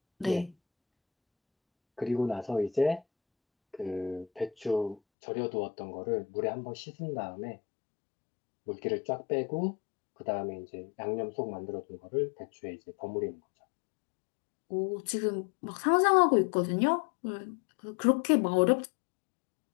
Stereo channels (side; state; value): right; drops out; at 5.0 s